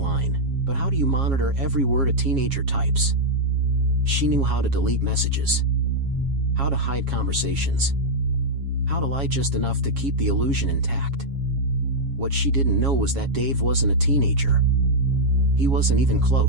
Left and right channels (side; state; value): left; late; 7.3 ms